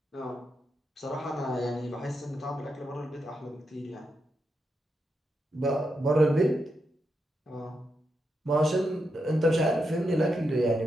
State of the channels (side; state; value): both; normal; correlation 0.85